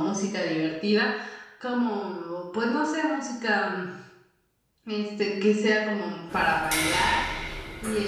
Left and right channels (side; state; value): both; identical; correlation 1.00